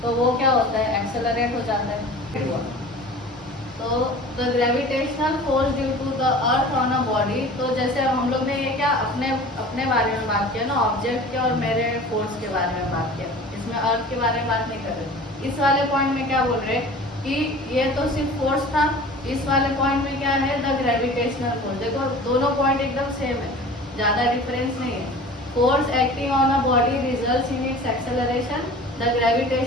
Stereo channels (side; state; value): both; normal; correlation 0.41